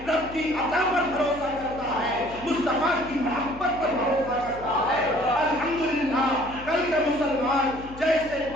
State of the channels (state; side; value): noise; left; hum, 16 dB below the sound